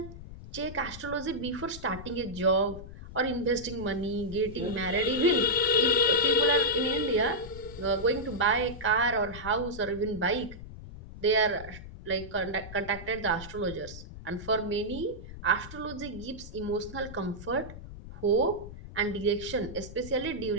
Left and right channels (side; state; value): left; noise; rumble, 13 dB below the sound